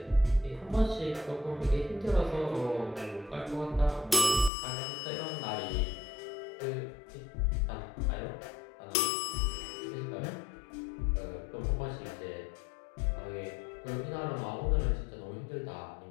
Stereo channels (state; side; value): drops out; right; at 4.5 s